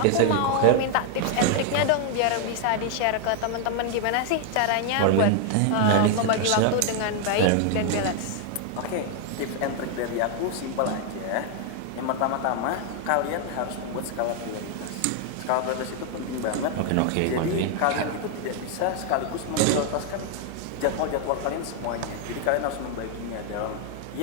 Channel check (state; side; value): different; both; correlation 0.00